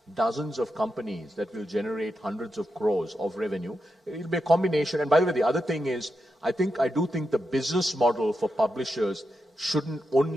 dozens of companies that will generate hundreds of crores of revenue. It'll be a combination. And by the way, the other thing is, I do think the business model for publishers shouldn't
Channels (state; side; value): normal; both; correlation 0.87